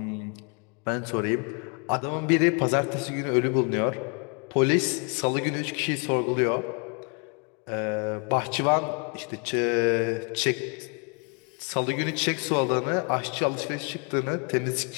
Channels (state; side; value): quieter; right; 36.4 dB